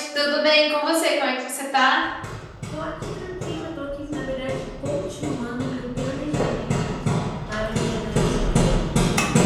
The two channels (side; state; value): both; identical; correlation 1.00